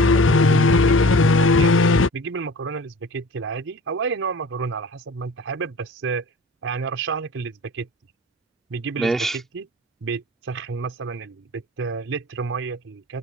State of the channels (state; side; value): normal; both; correlation 0.42